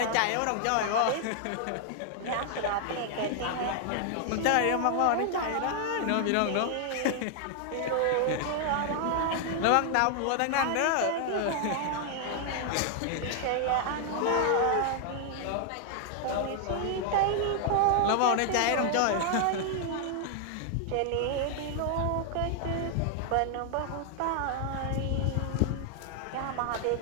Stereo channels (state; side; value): different; both; correlation 0.00